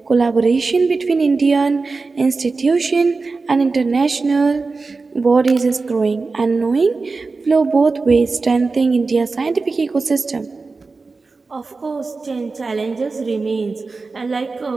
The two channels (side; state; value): left; quieter; 4.0 dB